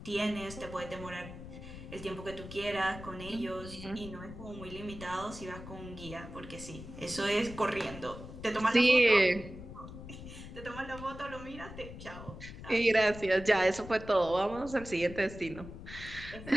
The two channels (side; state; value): left; noise; rumble, 12 dB below the sound